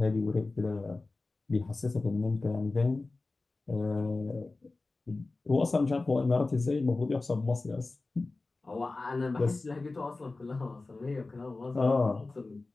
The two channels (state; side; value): quieter; right; 3.4 dB